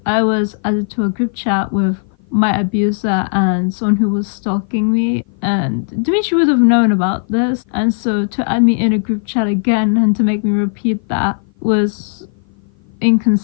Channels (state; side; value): silent; right; 55 dB below the other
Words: I was added to a group chat with my abuser and someone who was stalking me, and Dimitri would have known about this, and so to add me in a group chat again and to make me repeat that was